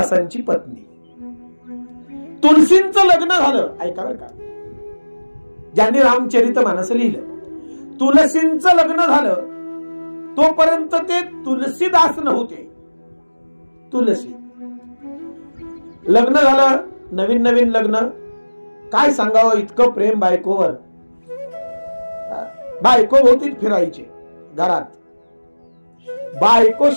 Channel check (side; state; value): both; inverted; correlation -1.00